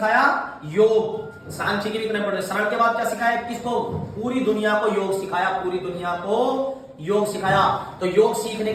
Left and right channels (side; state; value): both; identical; correlation 1.00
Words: योग। सांची की भी इतने पढ़े। शरण के बाद क्या सिखाया, किसको, पूरी दुनिया को योग सिखाया, पूरी दुनिया को योग सिखाया। तो योग सीखने